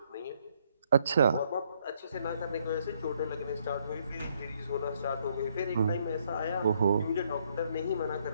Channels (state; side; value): inverted; both; correlation -0.70